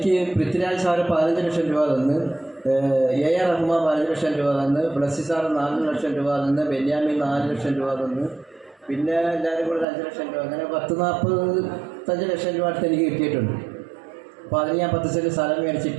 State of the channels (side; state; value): left; drops out; at 9.9 s